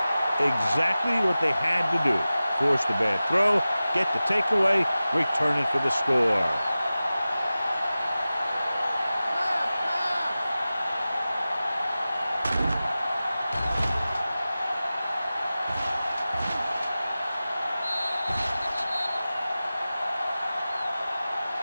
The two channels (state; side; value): inverted; both; correlation -0.96